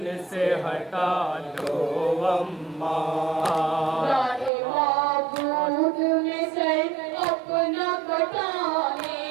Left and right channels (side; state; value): left; drops out; at 4.5 s